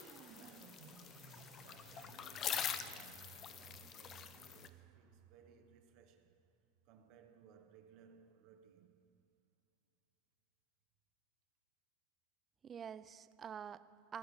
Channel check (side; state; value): right; quieter; 4.7 dB